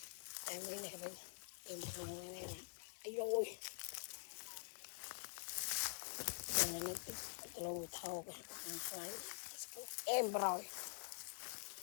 em mới này bên em này ấy rồi nó lâu thâu em rồi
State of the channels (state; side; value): silent; right; digital silence